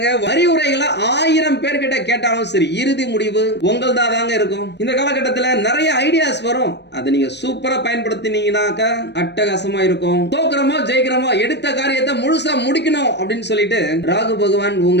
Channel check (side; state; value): right; late; 0.50 ms